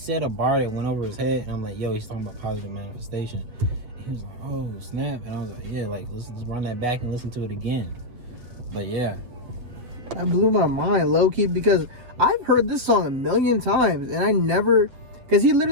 a bar that went over his head, and I'm like, yo, he's talking about positive manifestation. And he was like, oh snap, and I was like, yeah, like let's run that back and listen to it again. But yeah, that blew my mind, low key, because I've heard this song a million times, and I never, because he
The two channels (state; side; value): late; left; 7.9 ms